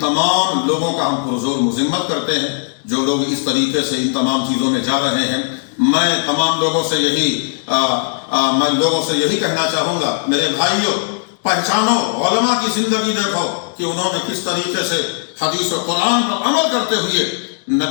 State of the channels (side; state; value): right; silent; digital silence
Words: تمام لوگوں کا ہم پرزور مذمت کرتے ہیں جو لوگ اس طریقے سے ان تمام چیزوں میں جا رہے ہیں. میں تمام لوگوں سے یہی کہنا چاہوں گا، میرے بھائیوں پہچانو، علماء کی زندگی دیکھو کہ انہوں نے کس طریقے سے حدیث و قرآن پر عمل کرتے ہوئے